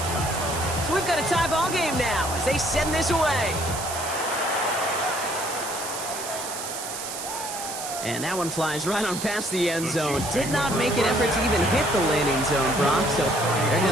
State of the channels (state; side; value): noise; right; hiss, 7 dB below the sound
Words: So we've got a tie ball game now as they send this away. And that one flies right on past the end zone. Did not make an effort to even hit the landing zone, Brock. So they're